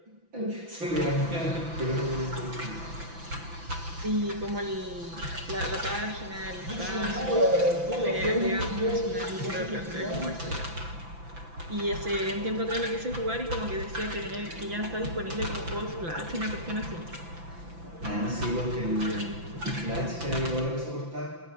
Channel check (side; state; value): left; late; 5.9 ms